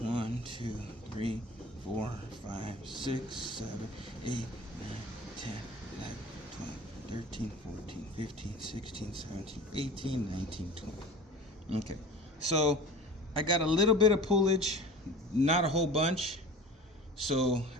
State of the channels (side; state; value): both; normal; correlation 0.39